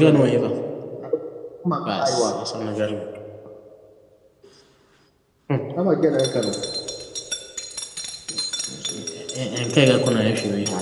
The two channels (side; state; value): both; identical; correlation 1.00